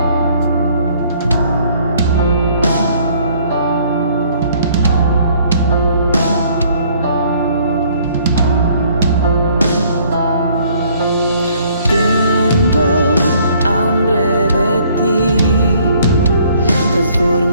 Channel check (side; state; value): both; inverted; correlation -0.60